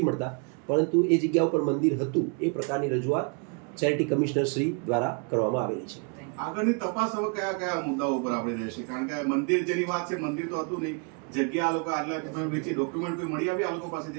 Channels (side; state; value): left; quieter; 35.4 dB